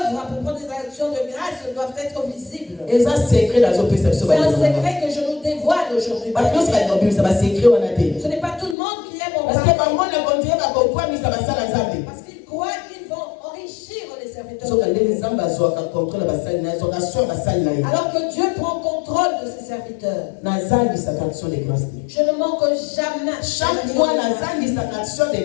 pour prendre des actions de grâce doivent être visibles. eza secret nazopesa biso C'est un bandeko na ngai. secret que je nous dévoile aujourd'hui. bato nyonso balinga kobimisa basecret wana te. Ce n'est pas tout le monde qui aime en parce que parler. bango na kontinue bakokwamisa basala nzambe. Parce qu'ils croient qu'ils vont enrichir les serviteurs. soka ndenge nzambe azwaka contrôle ya basali na ye azwaka sur basali na ye. Alors que Dieu prend contrôle de ses serviteurs. nazangisaka action de grâce te. Je ne manque jamais. chaque mois nazangisaka action de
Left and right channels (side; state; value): right; drops out; at 8.8 s